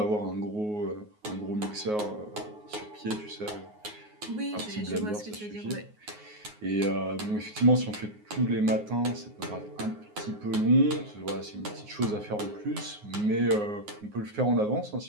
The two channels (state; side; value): late; left; 9.5 ms